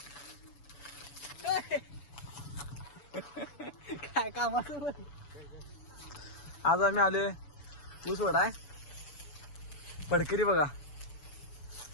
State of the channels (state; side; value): late; right; 7.0 ms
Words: काय कामाचं आज आम्ही आलोय ऊस वाढाय. पडकरी बघा,